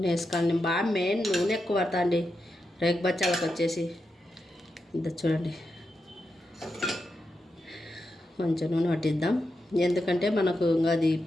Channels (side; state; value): both; normal; correlation 0.87